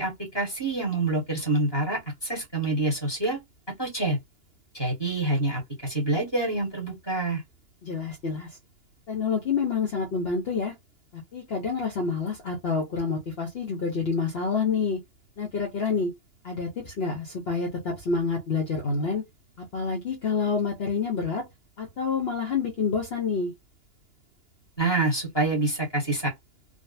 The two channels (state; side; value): late; right; 2.9 ms